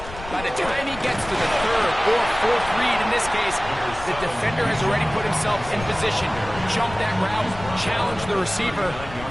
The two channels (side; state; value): left; noise; rumble, 13 dB below the sound